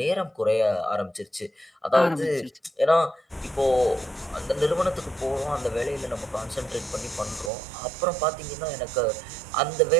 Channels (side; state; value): left; drops out; at 7.5 s